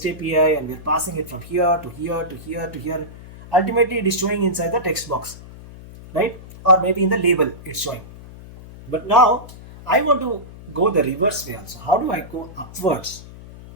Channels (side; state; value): left; noise; hum, 17 dB below the sound